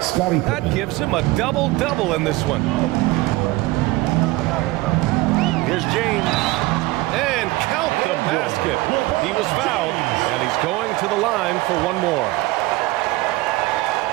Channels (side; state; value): left; quieter; 20.2 dB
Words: That gives him a double-double in this one. Here's James. And count the basket. He was fouled, and he's going to the line for one more.